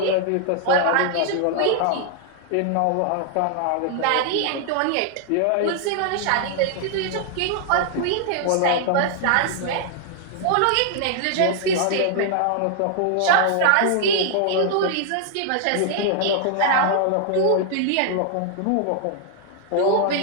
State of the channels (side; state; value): both; different; correlation 0.00